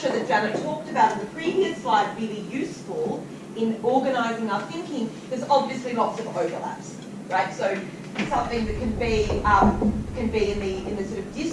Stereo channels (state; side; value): identical; both; correlation 1.00